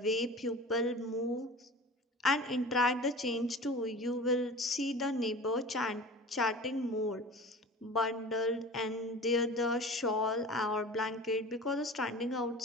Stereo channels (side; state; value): both; normal; correlation 0.37